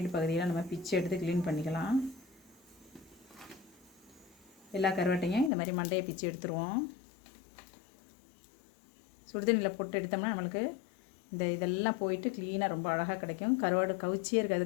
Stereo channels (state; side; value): drops out; right; at 5.5 s